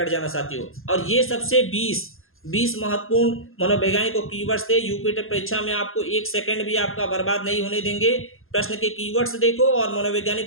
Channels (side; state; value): right; late; 0.61 ms